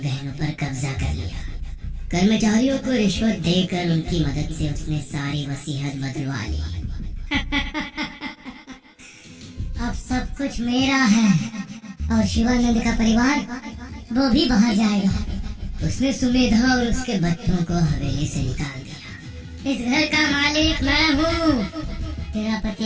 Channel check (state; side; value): identical; both; correlation 1.00